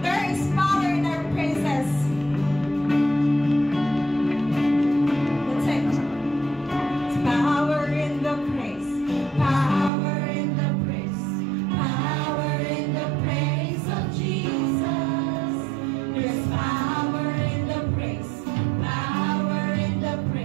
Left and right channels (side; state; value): left; drops out; at 9.9 s